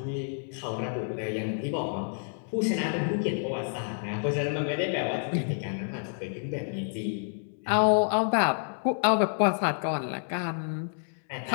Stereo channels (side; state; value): right; silent; digital silence